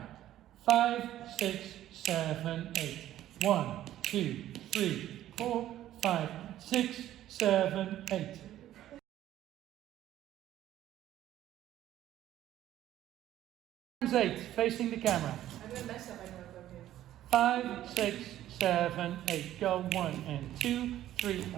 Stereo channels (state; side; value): quieter; left; 12.9 dB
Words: 5, 6, 7, 8. 1, 2, 3, 4, 5, 6, 7, 8. Times 8 facing the camera. 5, 6, 7, 8. Go 1 and 2, 3